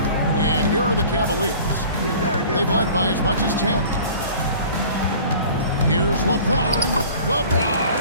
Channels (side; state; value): both; inverted; correlation -0.45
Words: And here are the Cavaliers. They've led by as much as 10. Here's LeBron.